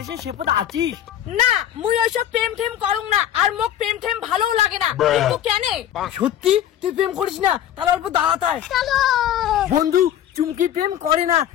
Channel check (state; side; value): quieter; right; 11.1 dB